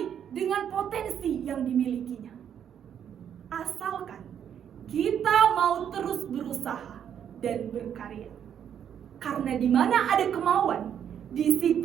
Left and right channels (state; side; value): quieter; left; 8.9 dB